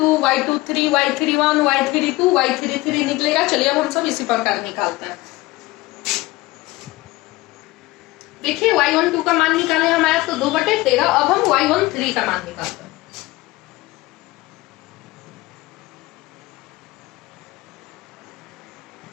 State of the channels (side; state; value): right; quieter; 19.8 dB